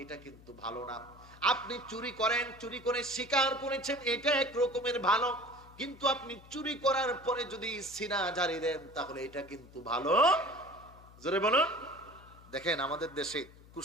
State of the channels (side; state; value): left; noise; hum, 22 dB below the sound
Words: এটা কিন্তু ভালো না। আপনি চুরি করেন, চুরি করে স্বীকার করেছেন, এটা এক রকমের ভালো, কিন্তু আপনি চুরি করার পরে যদি সিনা জারি দেন, তাহলে এটা কিন্তু ভালো। জোরে বলুন। দেখেন আমাদের দেশে